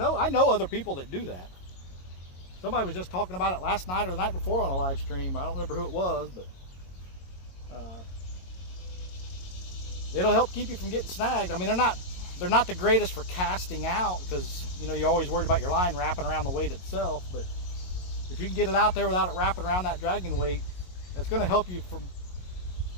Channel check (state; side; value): late; right; 22 ms